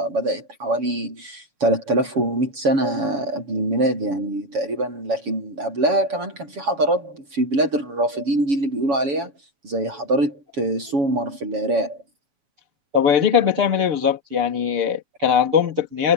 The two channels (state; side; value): late; left; 7.1 ms